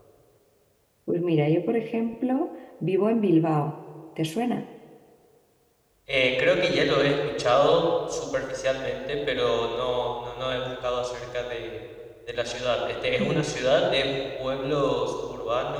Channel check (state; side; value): identical; both; correlation 1.00